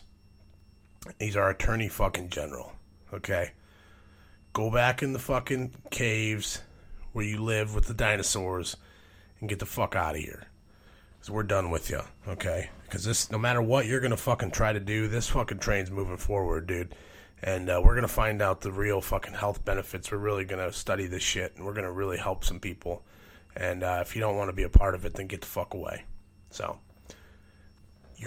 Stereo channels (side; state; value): both; identical; correlation 1.00